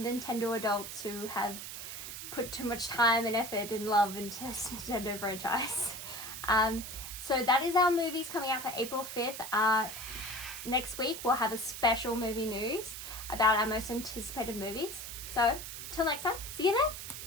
adults who have put too much time and effort and love into this Nintendo franchise. So that is our movies coming out for April 5th. Next week, we'll have a special movie news about our most anticipated movies. So, till next time, see you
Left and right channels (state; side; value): noise; right; hiss, 8 dB below the sound